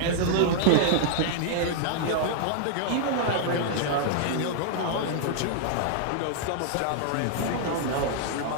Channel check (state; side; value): different; both; correlation -0.01